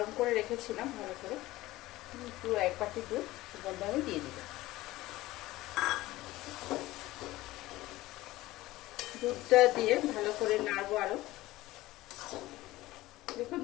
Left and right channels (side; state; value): right; quieter; 17.7 dB